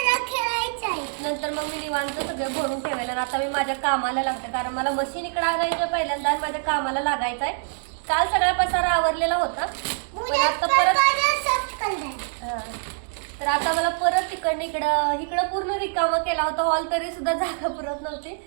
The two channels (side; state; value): left; silent; digital silence